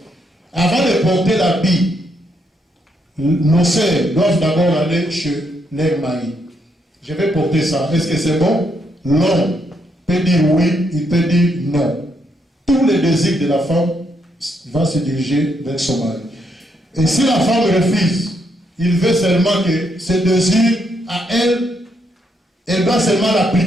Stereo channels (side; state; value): both; normal; correlation 0.76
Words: avant de porter l'habit, nos sœurs doivent d'abord aller chez leur mari. Je vais porter ça. Est-ce que c'est bon? Non. Il peut dire oui, il peut dire non. Tous les désirs de la femme vont se diriger vers son mari. Et si la femme refuse, il veut seulement que ce désir à elle, elle doit seulement